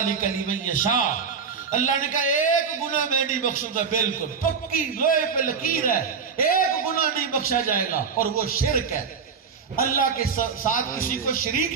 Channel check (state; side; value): quieter; left; 6.0 dB